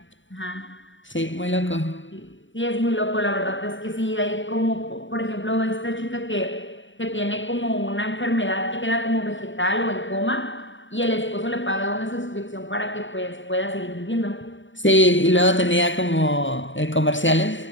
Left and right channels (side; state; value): right; late; 0.55 ms